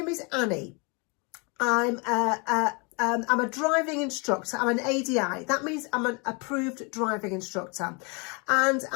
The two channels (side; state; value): right; quieter; 31.8 dB